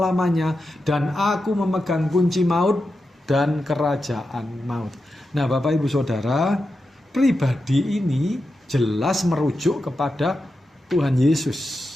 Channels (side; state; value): both; normal; correlation 0.89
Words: Dan aku memegang kunci maut dan kerajaan maut. Nah, Bapak Ibu Saudara, pribadi ini jelas merujuk kepada Tuhan Yesus.